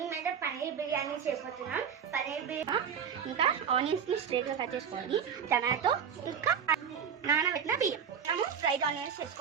పన్నీర్ బిర్యానీ చేయబోతున్నాం. పన్నీర్ బిర్యానీ ఇంకా ఆనియన్స్ని స్ట్రైట్గా కట్ చేసుకోవాలి. టమాటో ఇంకా నానబెట్టిన బియ్యం. మనము ఫ్రైడ్ ఆనియన్స్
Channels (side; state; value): left; quieter; 7.6 dB